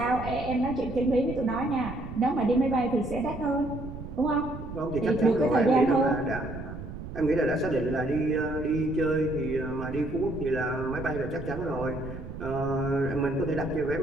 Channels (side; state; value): right; noise; rumble, 10 dB below the sound